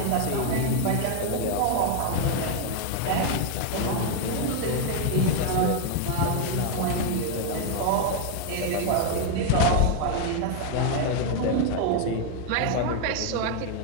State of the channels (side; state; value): both; different; correlation 0.01